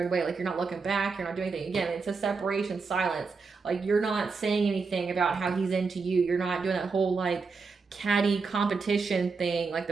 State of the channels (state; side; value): quieter; left; 4.7 dB